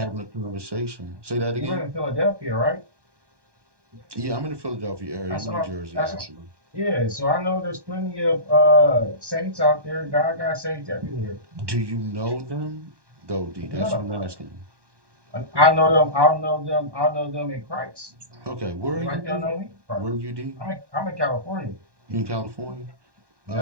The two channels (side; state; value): left; late; 1.2 ms